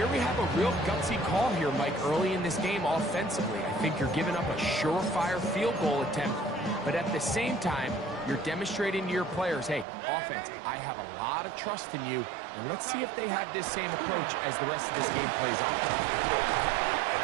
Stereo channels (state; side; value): drops out; left; at 9.9 s